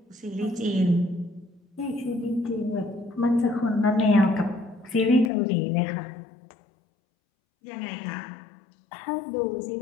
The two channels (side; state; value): right; drops out; at 5.3 s